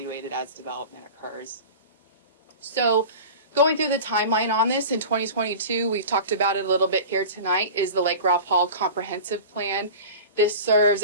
as development occurs. So going through the timeline on this in 2022, we've talked about it a little bit here tonight, is the Lake Ralph Hall Comprehensive Plan. This serves,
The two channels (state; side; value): inverted; both; correlation -0.35